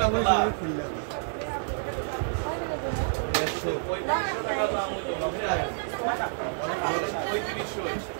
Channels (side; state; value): left; silent; digital silence